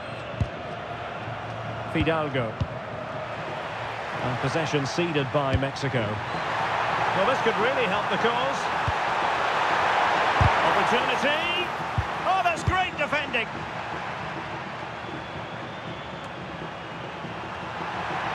Fidalgo. And possession ceded by Mexico. Well, this could really help the cause. Opportunity. Oh, that's great defending.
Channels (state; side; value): identical; both; correlation 1.00